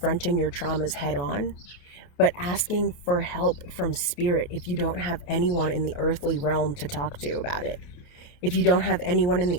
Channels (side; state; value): right; late; 28 ms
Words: your traumas head on, but asking for help from spirit if you don't have anyone in the earthly realm to talk to about it. If you don't have anyone in